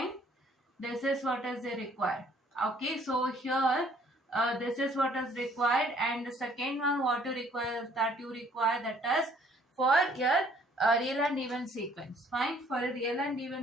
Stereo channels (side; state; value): both; normal; correlation 0.60